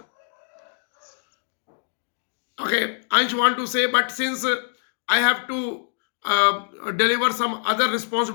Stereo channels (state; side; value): silent; right; digital silence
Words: Okay, Ansh want to say, but since I have to deliver some other